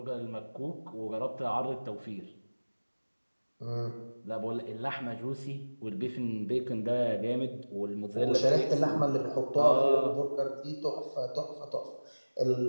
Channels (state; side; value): inverted; both; correlation -1.00